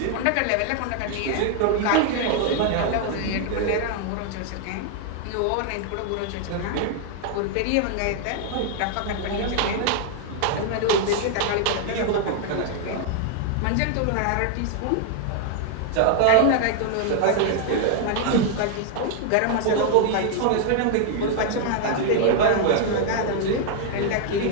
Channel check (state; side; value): different; both; correlation 0.00